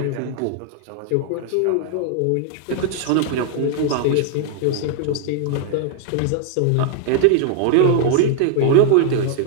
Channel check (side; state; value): both; different; correlation 0.00